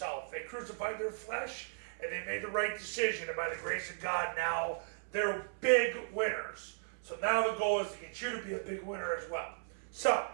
They crucified their flesh, and they made the right decision. And by the grace of God, now they're big winners. So now the goal is to get you to be a big winner as well. So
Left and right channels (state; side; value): silent; left; 54 dB below the other